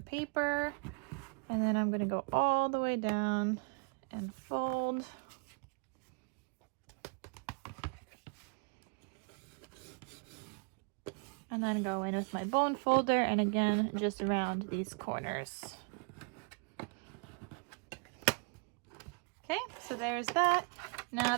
paper, and then I'm gonna go all the way down and fold. And then go in with my bone folder, and again, just around these corners. Okay, so there's that. Now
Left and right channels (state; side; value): quieter; left; 36.2 dB